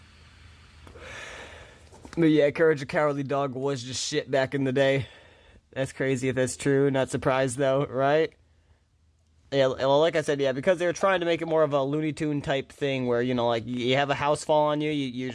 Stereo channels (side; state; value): both; identical; correlation 1.00